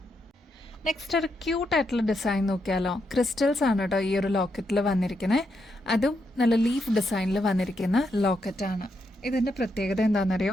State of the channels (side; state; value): both; normal; correlation 0.81